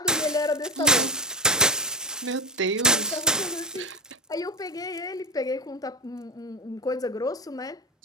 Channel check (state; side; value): normal; both; correlation 0.11